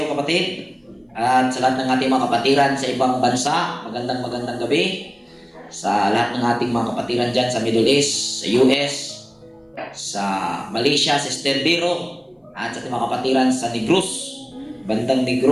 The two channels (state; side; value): identical; both; correlation 1.00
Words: kapatid. At sa lahat ng ating mga kapatiran sa ibang bansa, magandang gabi. Sa lahat ng ating mga kapatiran dyan sa Middle East, sa US, sa Malaysia, Sister Biro, at sa ating mga kapatiran sa Negros, bandang